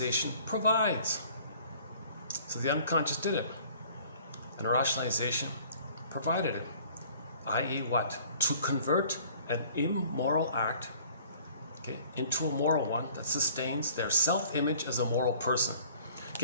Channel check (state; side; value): inverted; both; correlation -0.53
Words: provides. So the unconscious did it, and rationalization provided it. i.e. what? To convert an immoral act, okay, into a moral one that sustains their self-image as a moral person.